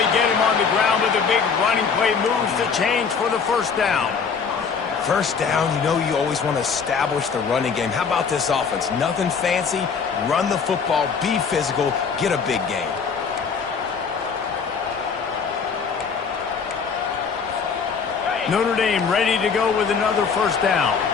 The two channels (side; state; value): right; quieter; 5.9 dB